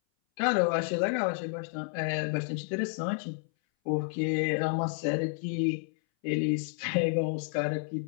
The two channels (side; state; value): right; silent; 58 dB below the other